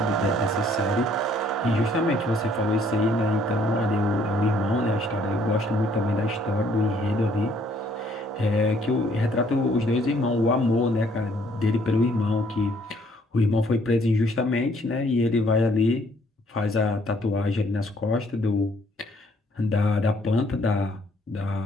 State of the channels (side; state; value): both; normal; correlation 0.64